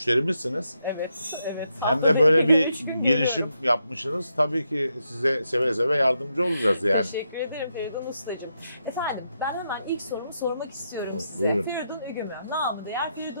Evet. Hem de böyle bir girişim yapmışsınız. Tabii ki size seve seve yardımcı olacağız yani. Teşekkür ederim Feridun Ustacığım. Efendim, ben hemen ilk sorumu sormak istiyorum size. Buyurun. Feridun Ügümü, namı değer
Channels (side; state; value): both; inverted; correlation -0.82